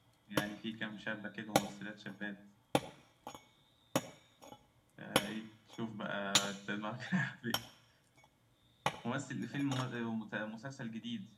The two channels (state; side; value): identical; both; correlation 1.00